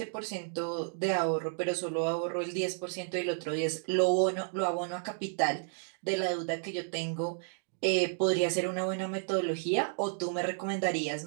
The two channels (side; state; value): left; silent; digital silence